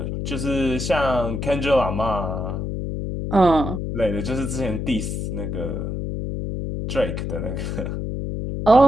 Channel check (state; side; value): noise; left; hum, 3 dB below the sound